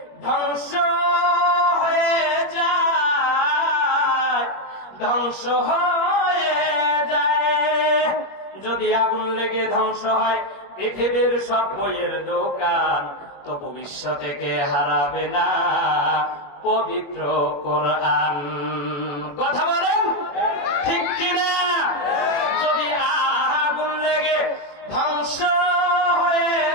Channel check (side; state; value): right; late; 21 ms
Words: ধ্বংস হয়ে যায়, ধ্বংস হয়ে যায়, যদি আগুন লেগে ধ্বংস হয় পৃথিবীর সব বইয়ের দোকান, তবু বিশ্ব থেকে হারাবে না পবিত্র কোরআন। কথা বলেন ঠিক কিনা? যদি আগুন লেগে ধ্বংস হয়ে